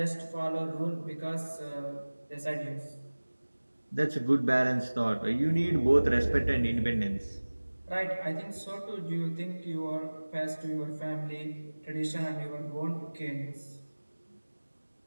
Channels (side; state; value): both; inverted; correlation -1.00